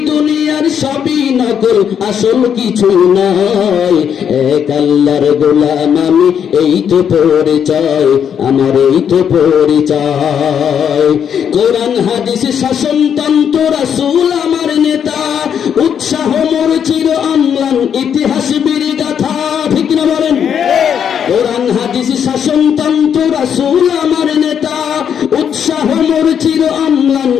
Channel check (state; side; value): quieter; right; 8.2 dB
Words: দুনিয়ার সবই নকল, আসল কিছু নাই, এক আল্লাহর গোলাম আমি, এই তো পরিচয় আমার, এই তো পরিচয়। কোরআন হাদিস শাসনতন্ত্র রাসূল আমার নেতা, উৎসাহ মোর চির অম্লান, ইতিহাস বীর গাথা, ঠিক না বলেন? কোরআন হাদিস শাসনতন্ত্র রাসূল আমার নেতা, উৎসাহ মোর চির অম্লান,